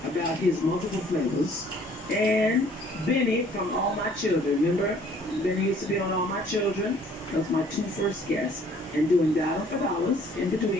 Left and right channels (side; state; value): both; normal; correlation 0.57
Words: about his multiple flavors, and Benny from All My Children. Remember, Benny used to be on All My Children. That was my two first guests. And doing Dollar for Dollars in